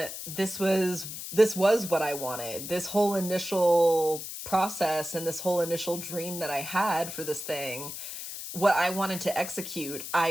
this was what I wanted. This whole initial process and this whole initial dream that I had for this thing, what I wanted to execute,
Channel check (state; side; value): noise; left; hiss, 8 dB below the sound